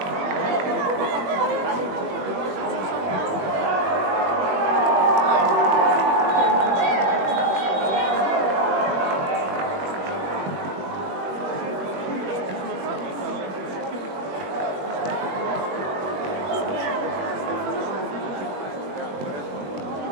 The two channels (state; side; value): late; left; 21 ms